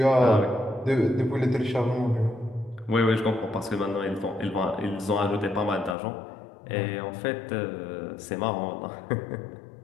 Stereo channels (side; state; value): right; drops out; at 6.0 s